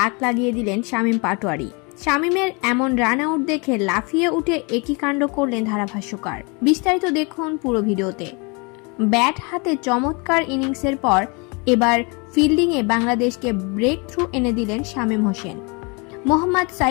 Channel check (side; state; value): right; quieter; 30.9 dB